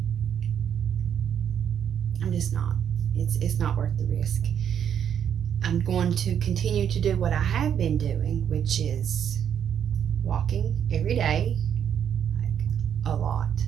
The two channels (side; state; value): left; quieter; 8.7 dB